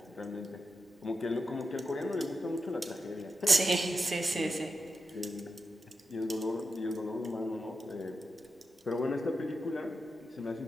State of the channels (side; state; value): both; normal; correlation 0.88